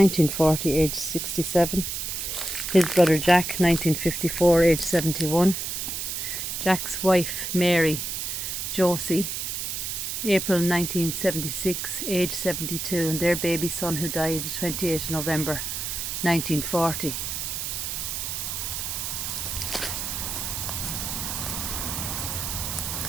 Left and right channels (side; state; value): right; noise; hiss, 3 dB below the sound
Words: age 67. His brother Jack, 1954, age 71. Jack's wife Mary Josie, April 1976, age 72. And their baby son, who died the 28th of November 1940.